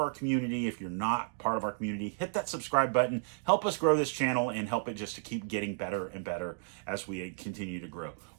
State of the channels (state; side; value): silent; left; digital silence